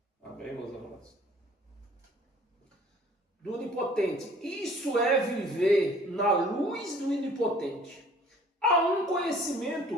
Amém, meus irmãos? Do onipotente. Isso é viver na luz do onipotente. Há um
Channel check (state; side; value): normal; both; correlation 0.53